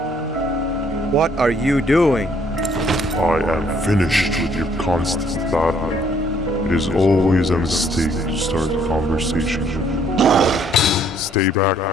What are you doing? I am finished with your constant battling. It is always a mistake to start a conversation. Stay back,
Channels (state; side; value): normal; both; correlation 0.64